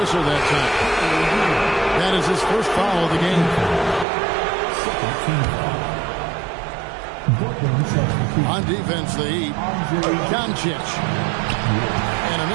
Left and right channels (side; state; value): left; drops out; at 4.0 s